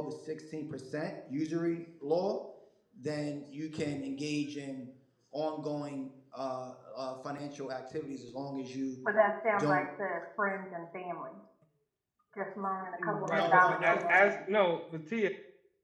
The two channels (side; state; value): both; identical; correlation 1.00